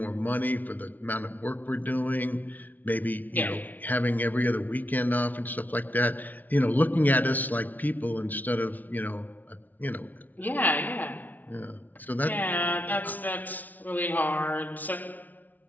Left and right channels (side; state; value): right; late; 0.079 ms